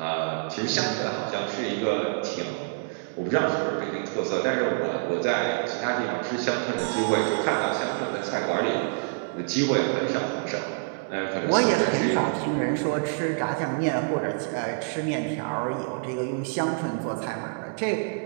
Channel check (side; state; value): left; silent; digital silence